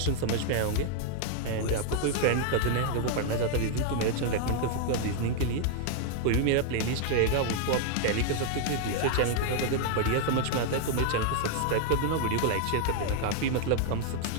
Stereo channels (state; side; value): different; both; correlation 0.00